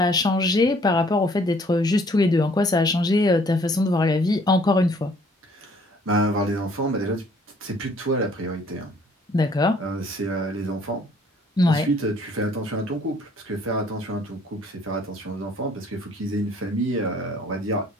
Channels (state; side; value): normal; both; correlation 0.59